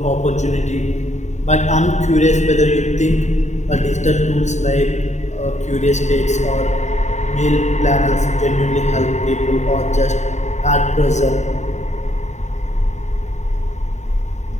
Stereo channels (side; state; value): right; late; 0.34 ms